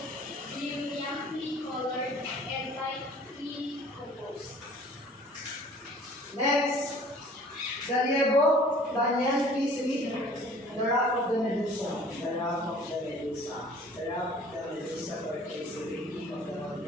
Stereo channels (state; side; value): normal; both; correlation 0.50